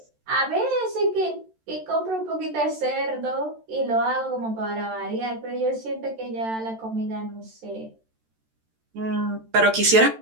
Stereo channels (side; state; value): left; late; 13 ms